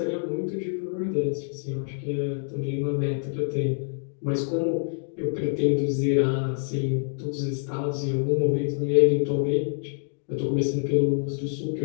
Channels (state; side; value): silent; right; digital silence